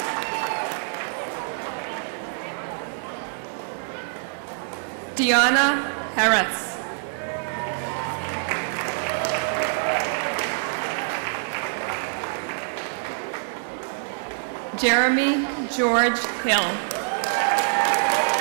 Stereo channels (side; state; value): left; silent; digital silence